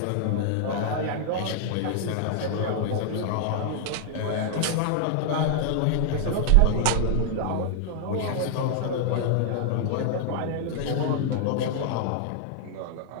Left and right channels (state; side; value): different; both; correlation -0.01